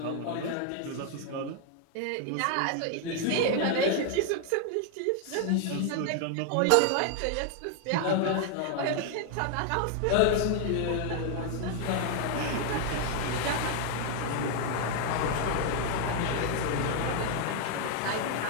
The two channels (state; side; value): different; both; correlation 0.00